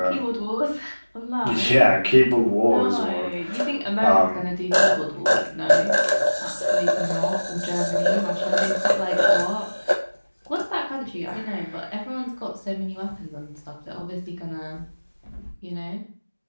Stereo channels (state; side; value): inverted; both; correlation -1.00